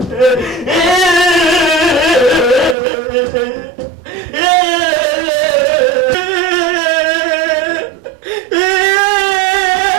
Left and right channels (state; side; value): drops out; left; at 2.8 s